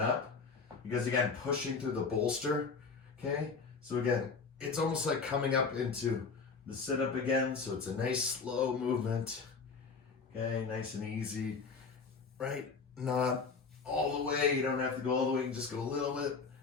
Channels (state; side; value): quieter; right; 4.9 dB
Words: Because again, pushing through the bolster, okay? So again, it's almost like coming up into the sit-up again. So it's a nice slow movement. Okay, nice and easy, right? Not all the way, you don't have to go all the way, you can just go a little bit.